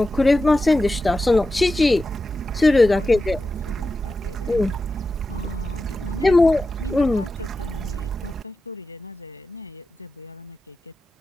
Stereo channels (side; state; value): both; normal; correlation 0.92